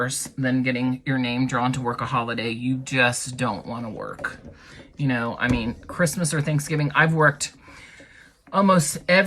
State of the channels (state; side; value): identical; both; correlation 1.00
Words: than getting your name drawn to work a holiday you just don't want to work. You know, I mean, Christmas or Thanksgiving, I've worked almost